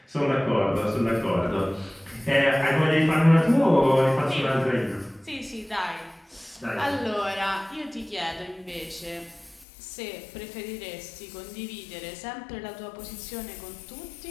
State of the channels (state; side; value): drops out; right; at 9.7 s